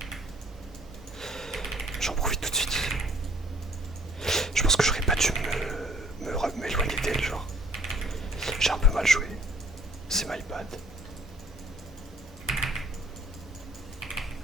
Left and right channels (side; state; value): both; normal; correlation 0.58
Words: J'en profite tout de suite. Je pense que j'aurais pas dû m'éloigner d'elle, genre. J'ai un peu mal joué. C'est my bad.